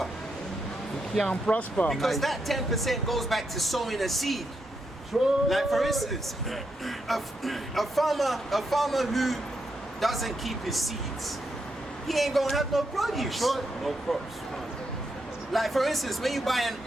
You can't prosper, Because man. that 10% goes back to sowing a seed. Like for instance, a farmer who doesn't keep his seeds, he ain't gonna have no produce. No crops. Like for instance, when you buy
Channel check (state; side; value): normal; both; correlation 0.82